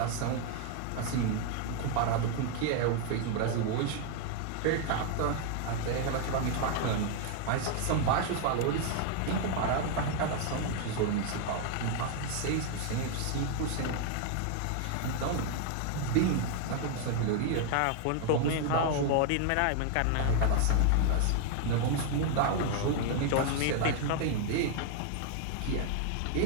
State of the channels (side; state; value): both; different; correlation 0.00